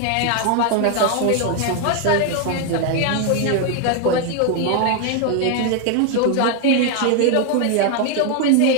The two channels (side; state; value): both; different; correlation 0.01